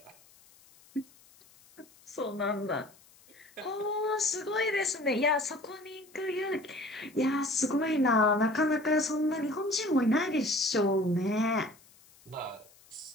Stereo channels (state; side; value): noise; left; hiss, 27 dB below the sound